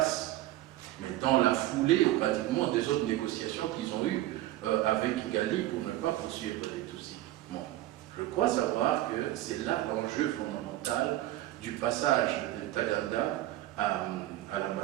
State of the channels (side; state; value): left; quieter; 15.4 dB